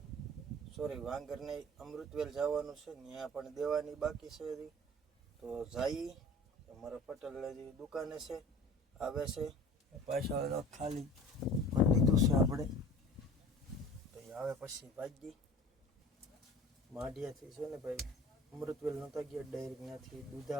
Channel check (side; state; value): both; normal; correlation 0.43